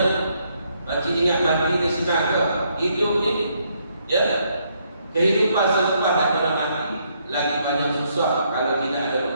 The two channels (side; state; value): both; inverted; correlation -0.73